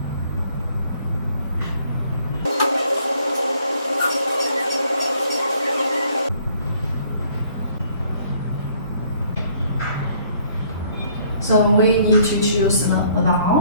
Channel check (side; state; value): both; inverted; correlation -0.62